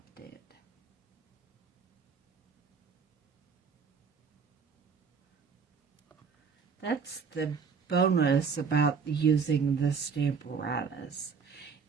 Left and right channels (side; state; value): left; quieter; 5.8 dB